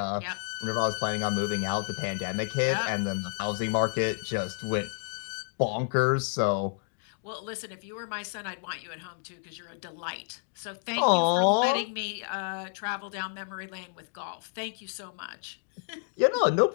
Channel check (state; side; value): silent; right; digital silence